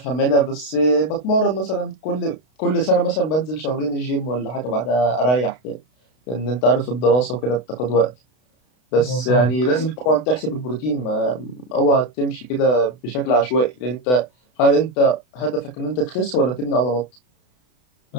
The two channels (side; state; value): right; late; 32 ms